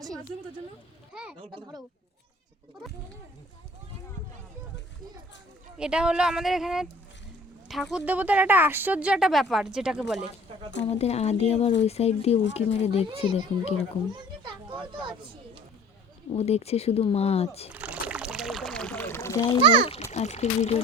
এটা হলো আমাদের এখানে ঠাকুর দেবতার একটা আশ্চর্য একটা ব্যাপার যেটাকে বলে। আমাদের আদি আবার ওই সাইড দিয়ে উঁকি মেরে দেখছে, দেখুন কিরকম। ও দেখছে শুধু মাছ। যাই হোক, আজকের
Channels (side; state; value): both; normal; correlation 0.50